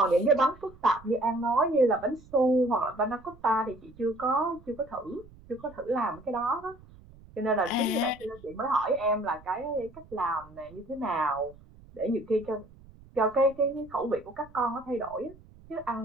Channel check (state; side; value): noise; right; rumble, 23 dB below the sound